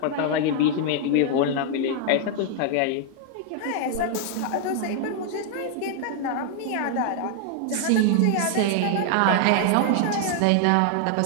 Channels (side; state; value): both; different; correlation 0.00